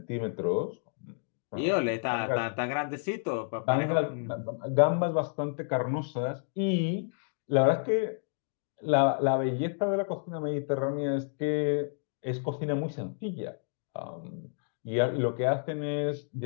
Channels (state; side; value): silent; right; digital silence